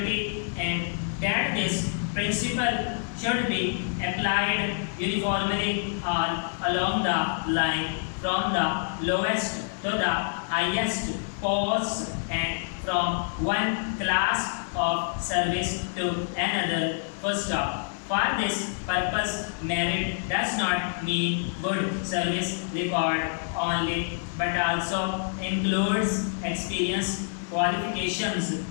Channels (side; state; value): right; silent; digital silence